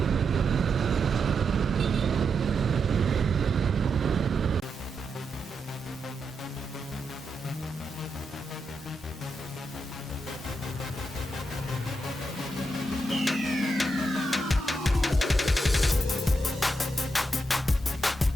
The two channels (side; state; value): both; normal; correlation 0.84